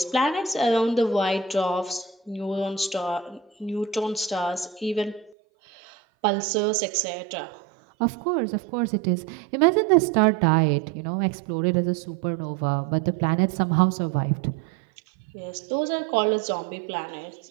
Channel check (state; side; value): drops out; left; at 5.4 s